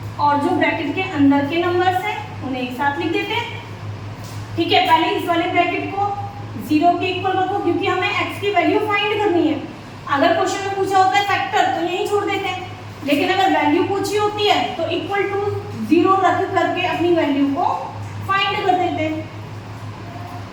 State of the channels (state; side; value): identical; both; correlation 1.00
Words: और जो ब्रैकेट के अंदर के नंबर्स हैं उन्हें एक साथ लिख देते हैं। ठीक है, पहले इस वाले ब्रैकेट को 0 के इक्वल रखो, क्योंकि हमें x की वैल्यू फाइंड करनी है। अगर क्वेश्चन में पूछा होता है फैक्टर तो यही छोड़ देते हैं, लेकिन अगर वैल्यू पूछी होती है तो इक्वल टू 0 रख करके अपनी वैल्यू को फाइंड कर देते हैं।